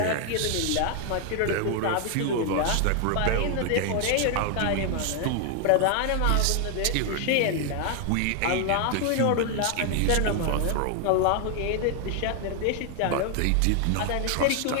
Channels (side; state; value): both; different; correlation 0.00